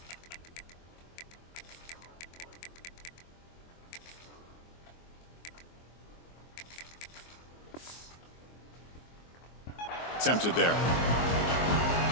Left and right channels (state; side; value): late; right; 24 ms